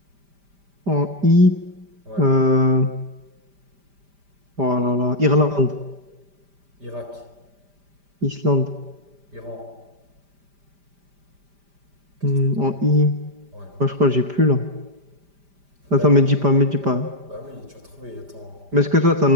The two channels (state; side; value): late; left; 5.0 ms